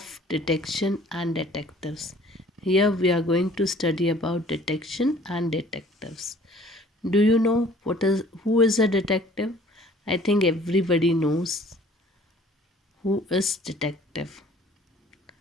detection and detectives. Here we are going to study about detection and detectives. Do you know who is a detective? I think everybody knows who is detective.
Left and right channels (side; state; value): both; normal; correlation 0.53